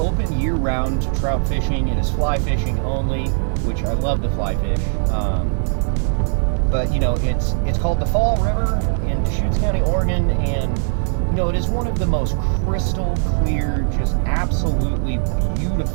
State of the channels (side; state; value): left; silent; digital silence